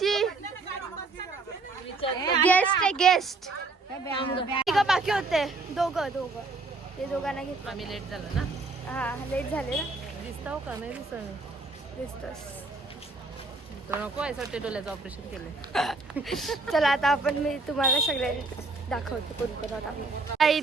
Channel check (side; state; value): left; quieter; 3.6 dB